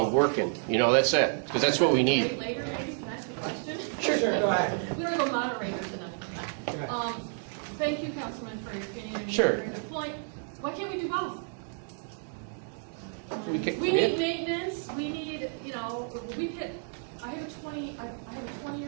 working. You know, that's it, because that's what we need. Later, maybe, can I ask a question? Sure, go ahead. We don't have a moderator tonight. Thank you, Councilman, for your opinion. And Sure. your point. Why can't we do both? We need maintenance. We need, you know, I have a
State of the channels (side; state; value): left; silent; 57 dB below the other